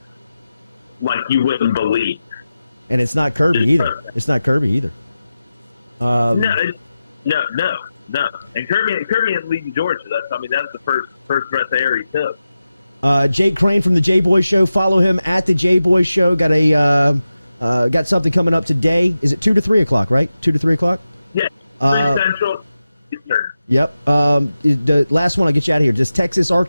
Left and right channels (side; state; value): both; inverted; correlation -0.92